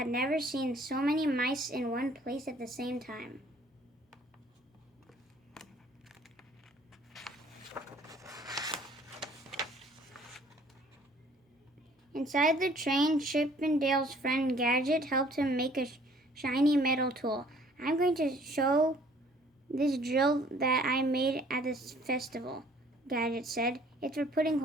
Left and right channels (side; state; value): both; normal; correlation 0.56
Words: never seen so many mice in one place at the same time. Inside the train, Chip and Dale's friend Gadget helped him make a shiny metal tool. "I'm going to show this drill that I made at this festival," Gadget said. "It's for putting